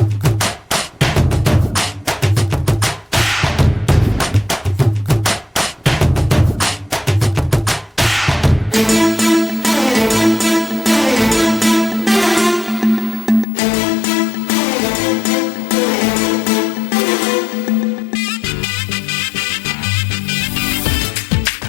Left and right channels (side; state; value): right; drops out; at 13.5 s